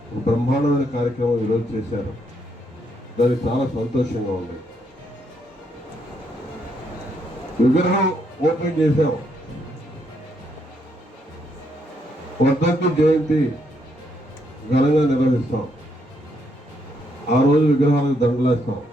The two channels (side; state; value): both; normal; correlation 0.75